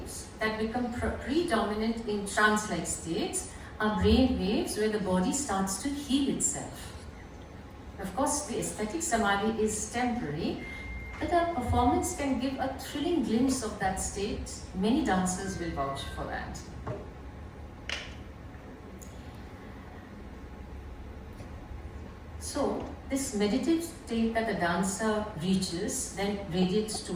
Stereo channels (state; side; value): identical; both; correlation 1.00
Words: that become predominant in trance-like states are brain waves where the body starts to heal itself. Of course, the aesthetic Samadhi is temporary, but our performance can give a thrilling glimpse of that state. Many dancers will vouch for that. So, this meditative state that the dancer reaches then radiates